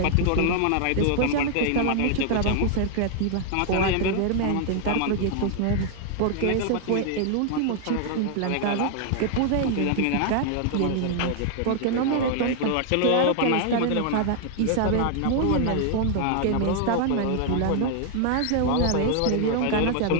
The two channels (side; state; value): both; different; correlation 0.00